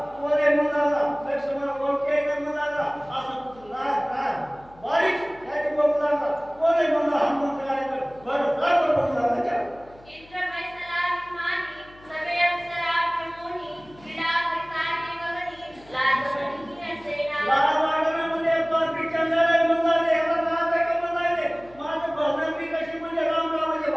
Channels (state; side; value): noise; left; hum, 25 dB below the sound